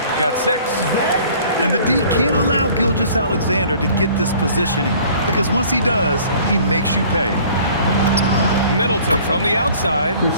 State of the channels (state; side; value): inverted; both; correlation -0.52